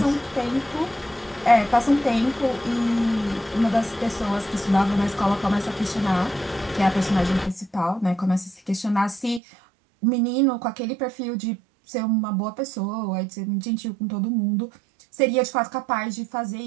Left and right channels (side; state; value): left; drops out; at 9.4 s